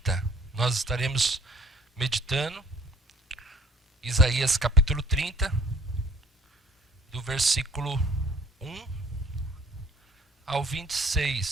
Nós estaremos meditando Isaías capítulo 30, do versículo 1 ao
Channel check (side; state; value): both; normal; correlation 0.54